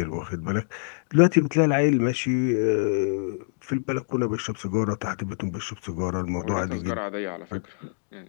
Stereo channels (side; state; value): right; silent; digital silence